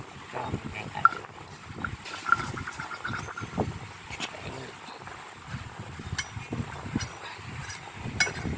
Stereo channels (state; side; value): identical; both; correlation 1.00